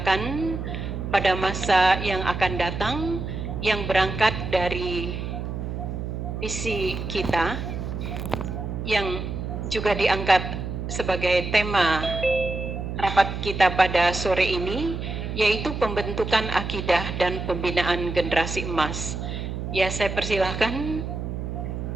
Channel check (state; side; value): noise; right; hum, 5 dB below the sound